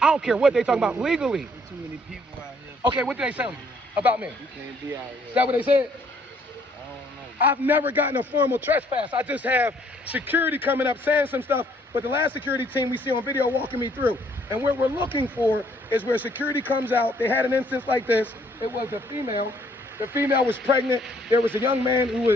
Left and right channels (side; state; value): both; normal; correlation 0.65